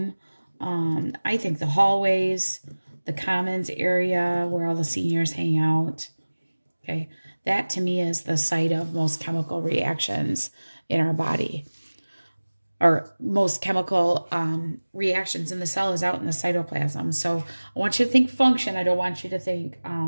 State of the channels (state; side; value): inverted; both; correlation -1.00